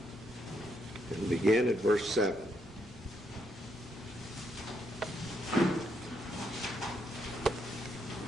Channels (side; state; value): both; normal; correlation 0.76